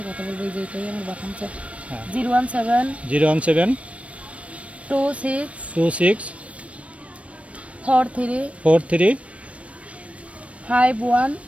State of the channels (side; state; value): left; late; 0.063 ms